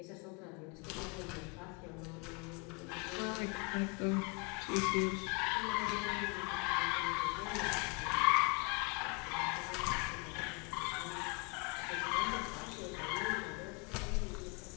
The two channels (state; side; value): quieter; right; 30.2 dB